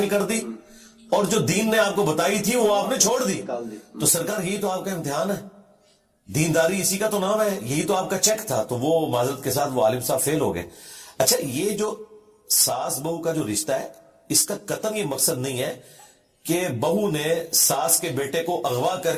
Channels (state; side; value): identical; both; correlation 1.00